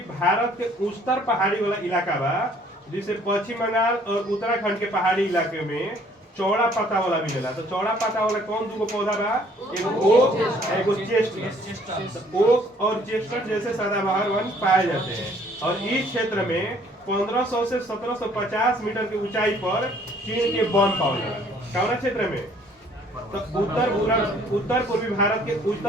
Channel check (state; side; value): normal; both; correlation 0.59